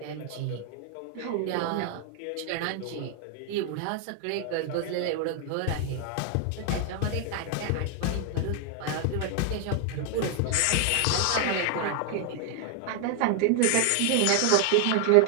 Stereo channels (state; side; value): different; both; correlation 0.00